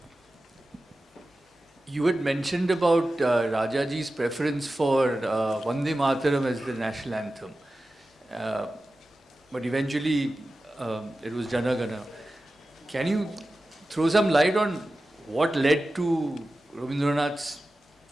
You had mentioned about Rajaji's preference for Vande Mataram as the national anthem. But eventually it was Jana Gana. Can you throw some light on what led to Rabindranath's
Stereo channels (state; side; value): normal; both; correlation 0.94